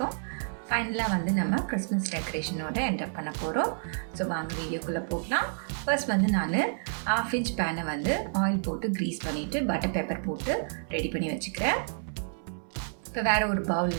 ஃபைனலாக வந்து நம்ம கிறிஸ்மஸ் டெக்கரேஷனோட என்டர் பண்ண போகிறோம். ஸோ வாங்க வீடியோக்குள்ளே போகலாம். ஃபர்ஸ்ட் வந்து நான் 1/2 inch பேனை வந்து ஆயில் போட்டு க்ரீஸ் பண்ணிவிட்டு பட்டர் பேப்பர் போட்டு ரெடி பண்ணி வச்சுக்கிறேன். இப்போ வேறு ஒரு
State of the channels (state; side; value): silent; left; 58 dB below the other